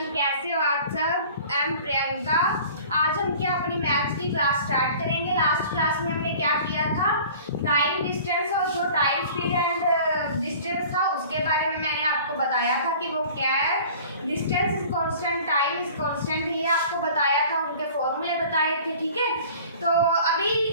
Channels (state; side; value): inverted; both; correlation -0.46